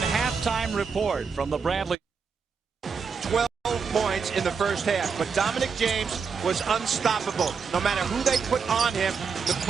report from the Bradley. 12 points in the first half, but Dominic James was unstoppable. No matter who they put on him, the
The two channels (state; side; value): quieter; left; 5.7 dB